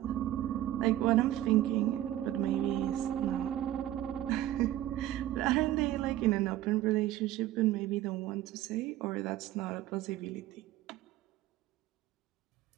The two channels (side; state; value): left; quieter; 13.7 dB